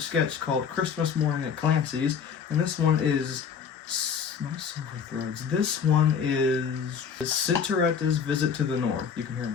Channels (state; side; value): quieter; right; 6.8 dB